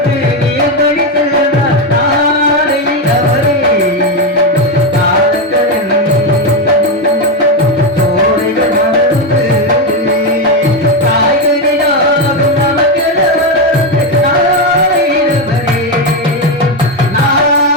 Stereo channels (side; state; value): both; normal; correlation 0.09